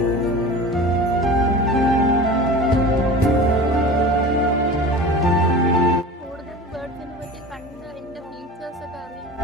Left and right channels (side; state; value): both; normal; correlation 0.35